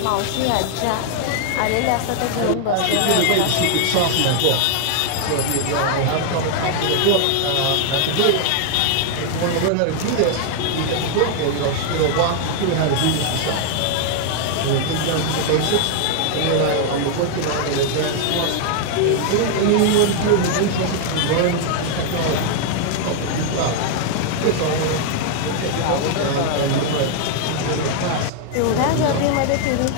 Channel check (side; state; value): both; different; correlation 0.00